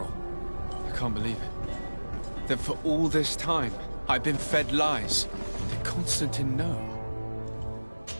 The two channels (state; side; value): inverted; both; correlation -1.00